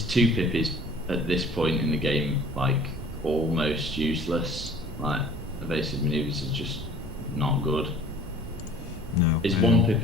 2-pip is at this point in the game like almost useless. Like evasive maneuvers is just not good. No. His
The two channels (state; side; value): normal; both; correlation 0.49